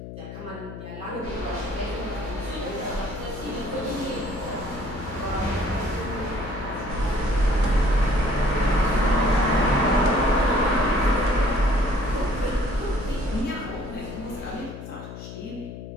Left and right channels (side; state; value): left; noise; hum, 11 dB below the sound